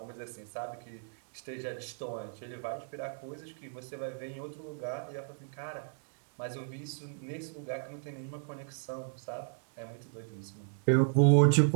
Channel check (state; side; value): silent; left; digital silence